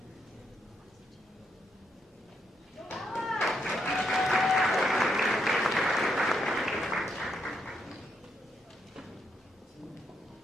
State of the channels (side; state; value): both; normal; correlation 0.78